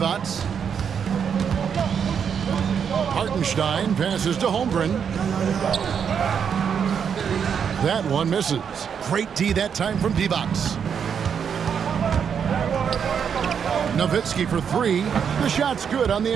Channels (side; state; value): left; quieter; 7.3 dB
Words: Hartenstein passes to Holmgren. That one misses. Great D that time from Divac. Nowitzki for 3. The shot's good on the